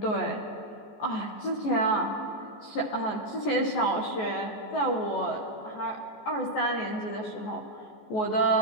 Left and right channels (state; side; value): late; right; 14 ms